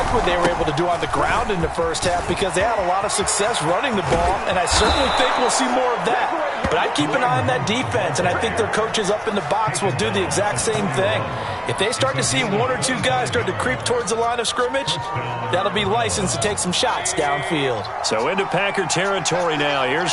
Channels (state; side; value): identical; both; correlation 1.00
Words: what they were able to do on the ground in the first half because they had a lot of success running the ball, and I certainly think we'll see more of that. But I'd keep an eye on that defense, and I think their coaches up in the box will do the exact same thing. If they start to see one or two guys start to creep towards the line of scrimmage, that'll be licensed to take some shots downfield. So into Packer territory now. Here's